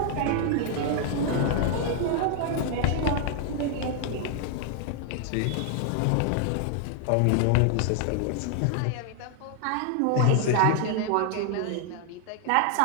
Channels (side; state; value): both; different; correlation 0.00